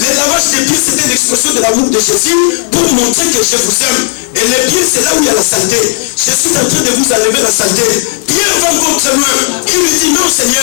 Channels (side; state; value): right; silent; digital silence